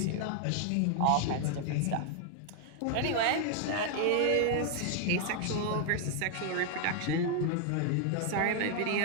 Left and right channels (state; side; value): different; both; correlation 0.00